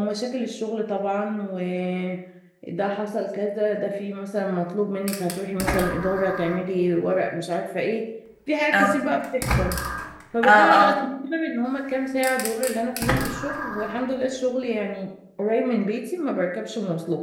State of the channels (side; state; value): both; identical; correlation 1.00